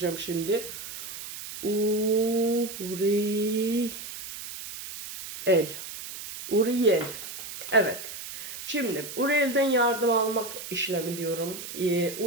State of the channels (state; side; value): noise; right; hiss, 10 dB below the sound